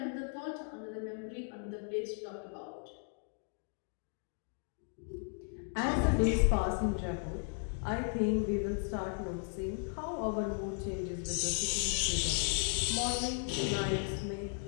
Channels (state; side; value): silent; right; 54 dB below the other